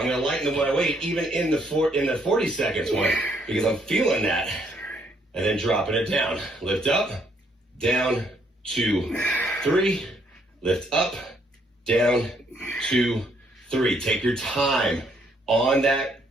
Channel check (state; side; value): normal; both; correlation 0.70